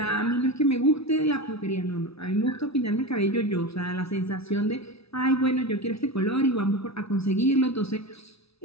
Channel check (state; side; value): late; right; 0.78 ms